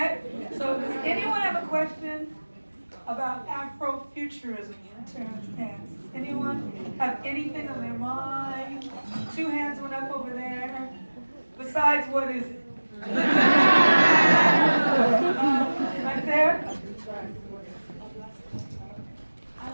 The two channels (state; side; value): inverted; both; correlation -1.00